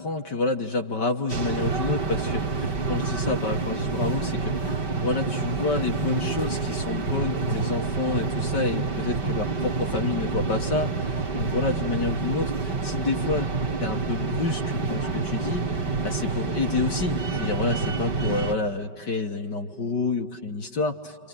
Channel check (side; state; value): right; late; 5.2 ms